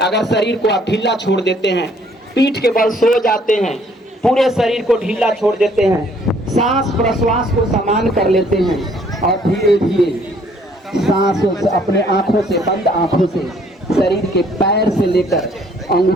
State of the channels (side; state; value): both; normal; correlation 0.62